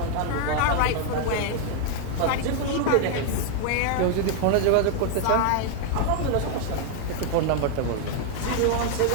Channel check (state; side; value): different; both; correlation 0.00